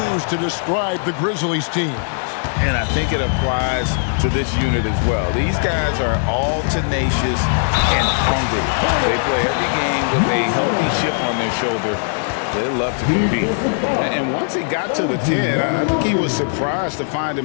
to describe the Grizzlies team. And I think it applies to this unit as well. These guys are all tenacious and hungry. They play every game with a healthy chip on their shoulder. They love to compete. And once he got to the 10, I think he was surprised to find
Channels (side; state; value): right; silent; 67 dB below the other